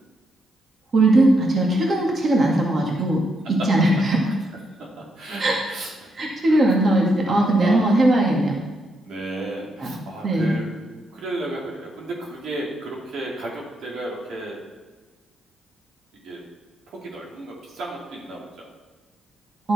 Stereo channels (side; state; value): both; normal; correlation 0.79